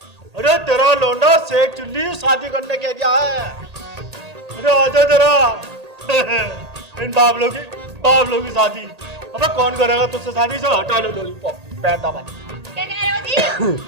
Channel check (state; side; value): late; left; 1.8 ms